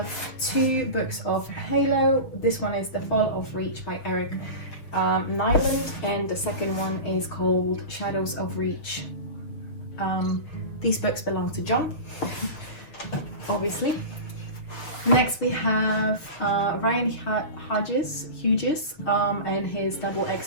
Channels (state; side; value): late; right; 6.9 ms